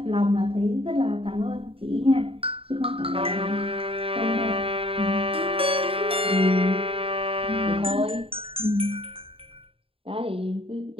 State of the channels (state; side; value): late; left; 0.27 ms